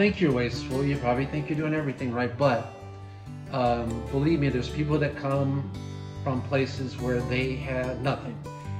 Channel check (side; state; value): both; identical; correlation 1.00